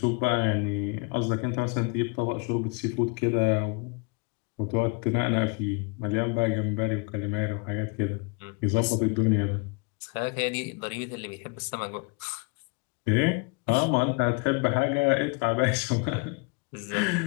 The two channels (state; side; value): quieter; right; 30.6 dB